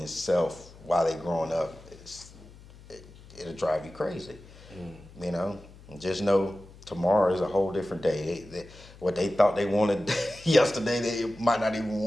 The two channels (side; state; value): left; noise; hum, 21 dB below the sound